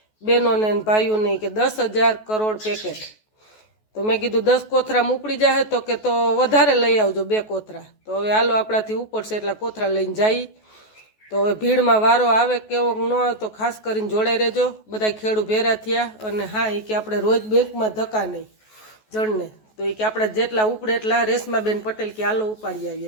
બહેનોને ભાઈઓને કે 10,000 કરોડ પેકેટ. તો મેં કીધું 10 કોથરામાં ઉપડી જાય, તો કે તો વધારે લઈ આવજો 2 કોથરા. તો હવે હાલો આપણાથી ઉપડશે એટલા કોથરા લઈને જઈએ. તો હવે ભીડમાં વારો આવે કેવો ન આવે તો ખાસ કરીને જોડાઈ રહેજો. બધા ખેડૂત ભેરા થયા. અને હા, એ કે આપણે રોજ બેંકમાં ધક્કા નહીં જણને, તો એ કે આપણે જેટલા ઉપડે એટલા રેશમાબેન પટેલ કે હાલો ઉપાડી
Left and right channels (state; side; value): late; right; 14 ms